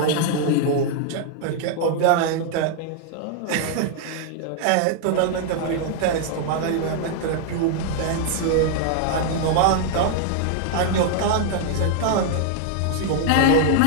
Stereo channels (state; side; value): different; both; correlation -0.01